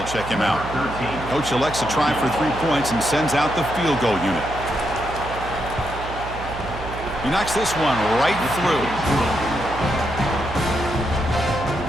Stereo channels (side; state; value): right; noise; hum, 10 dB below the sound